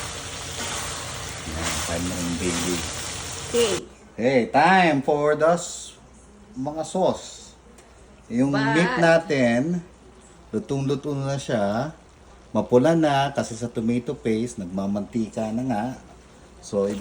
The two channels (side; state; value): both; identical; correlation 1.00